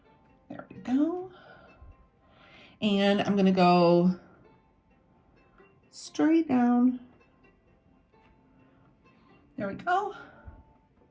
There we go. And I'm gonna go straight down. There we go.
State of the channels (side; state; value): both; identical; correlation 1.00